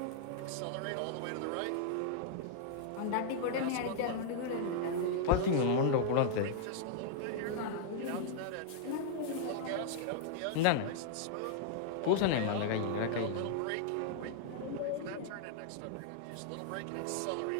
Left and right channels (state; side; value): different; both; correlation -0.01